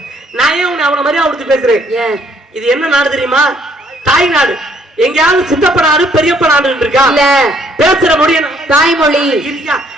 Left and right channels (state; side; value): normal; both; correlation 0.65